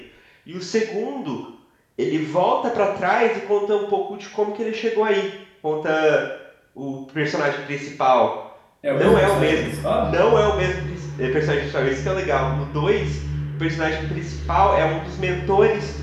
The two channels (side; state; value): both; identical; correlation 1.00